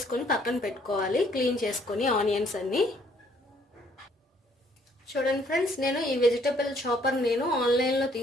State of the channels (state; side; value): normal; both; correlation 0.64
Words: పక్కన పెట్టుకోవాలి, క్లీన్ చేసుకొని ఆనియన్స్ అన్నీ. చూడండి ఫ్రెండ్స్, నేను ఈ వెజిటబుల్ చాపర్ నేను ఆన్లైన్లో